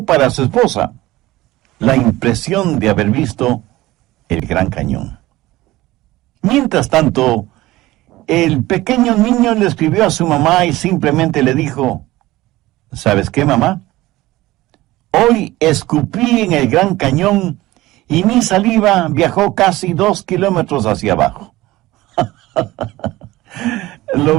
para su esposa la impresión de haber visto el Gran Cañón. Mientras tanto, el pequeño niño le escribió a su mamá y simplemente le dijo: ¿sabes qué, mamá? Hoy escupí en el Gran Cañón y mi saliva viajó casi 2 kilómetros hacia abajo. ¿Lo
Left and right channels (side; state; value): left; quieter; 17.9 dB